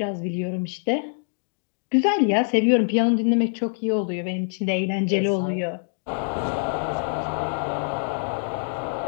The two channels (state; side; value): silent; right; digital silence